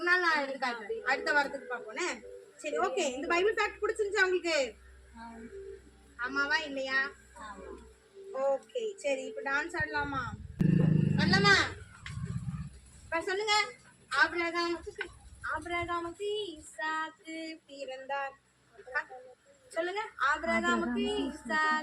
நாள் நான் எடுத்துக்காட்டு, அடுத்த வாரத்துக்கு பார்ப்போனே. சரி, ஓகே. இந்த பைபிள் ஃபேக்ட் பிடிச்சிருந்துச்சா உங்களுக்கு? ஆமாவா இல்லையா? ஓகே, சரி. இப்ப டான்ஸ் ஆடலாமா? ஆபிரகாமுக்கு ஈசாக்கு பிறந்தார். சொல்லுங்க. ஆபிரகாமுக்கு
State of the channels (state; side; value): identical; both; correlation 1.00